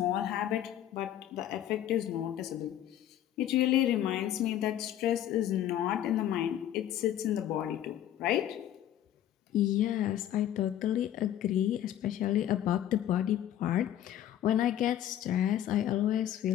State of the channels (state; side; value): quieter; right; 11.6 dB